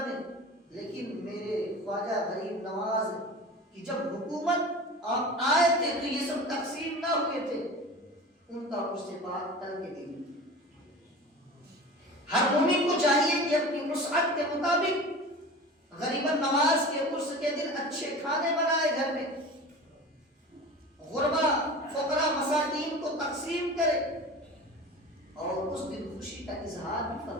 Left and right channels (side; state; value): both; normal; correlation 0.35